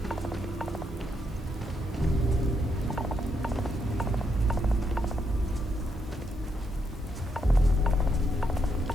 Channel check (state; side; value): normal; both; correlation 0.79